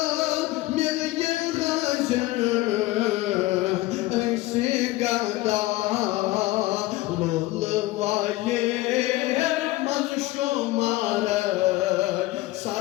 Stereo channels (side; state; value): right; quieter; 18.3 dB